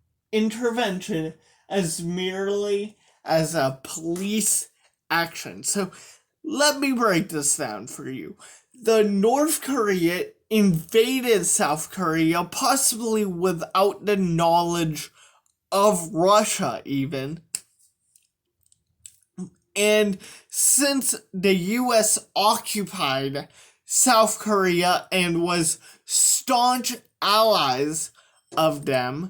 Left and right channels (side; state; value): both; identical; correlation 1.00